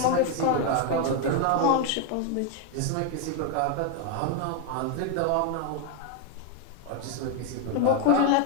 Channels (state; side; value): different; both; correlation 0.01